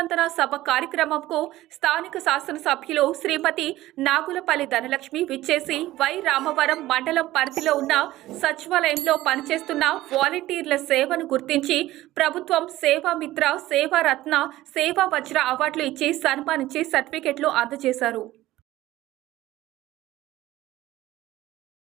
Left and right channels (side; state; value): left; quieter; 16.0 dB